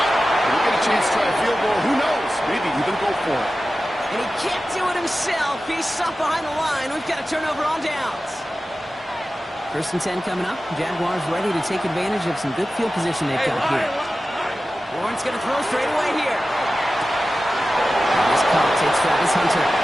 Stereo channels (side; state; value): both; normal; correlation 0.94